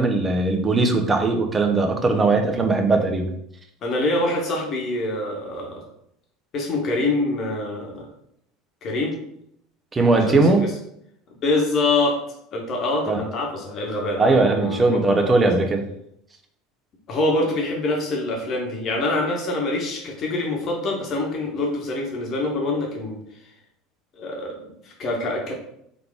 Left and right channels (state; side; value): normal; both; correlation 0.53